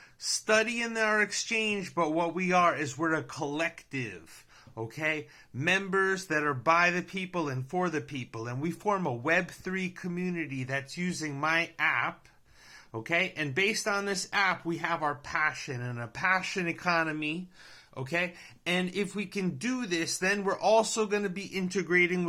study in our exchange, but what we are is we're a collective, okay? Members that are by the people and for the people, and we form a Web3 community that's using my app, okay? And based on this app, we have our passion and a passion economy. Okay, and if we can do this, then we're also going to be integrating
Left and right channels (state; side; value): identical; both; correlation 1.00